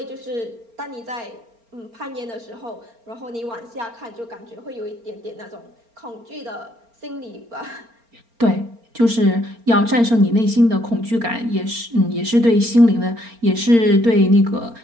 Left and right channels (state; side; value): late; left; 4.3 ms